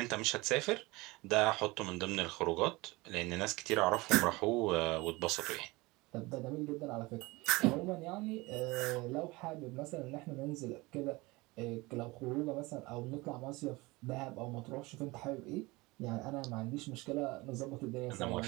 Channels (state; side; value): quieter; left; 22.7 dB